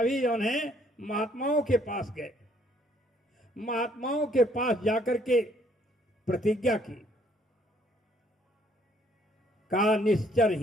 है महात्माओं के पास गए। महात्माओं के पास जाकर के प्रतिज्ञा की, का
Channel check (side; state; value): both; normal; correlation 0.65